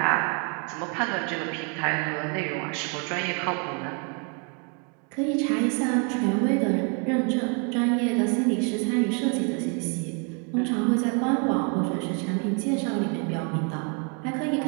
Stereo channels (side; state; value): left; quieter; 37.0 dB